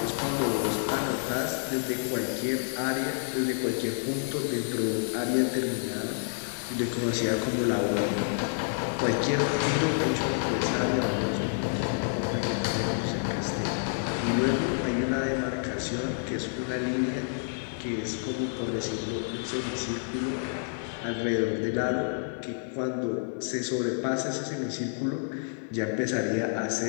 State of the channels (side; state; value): right; silent; 55 dB below the other